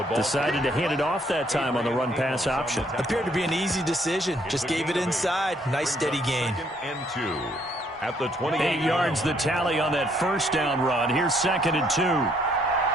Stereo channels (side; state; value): both; normal; correlation 0.68